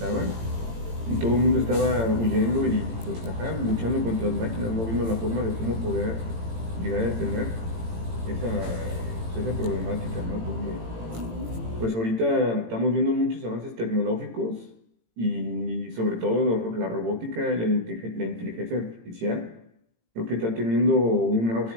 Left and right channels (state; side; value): late; left; 18 ms